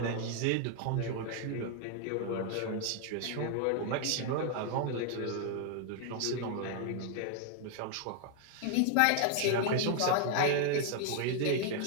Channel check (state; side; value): different; both; correlation 0.00